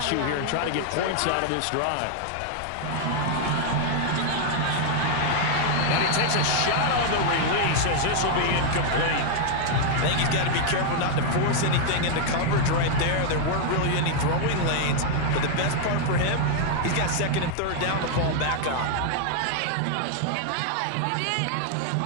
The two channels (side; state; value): both; different; correlation 0.00